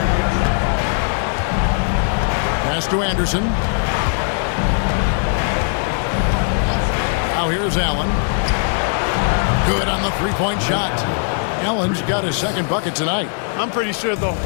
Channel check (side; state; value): right; silent; 58 dB below the other